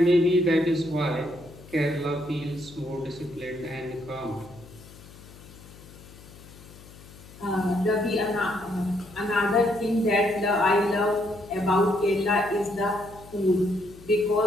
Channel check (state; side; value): noise; left; hum, 20 dB below the sound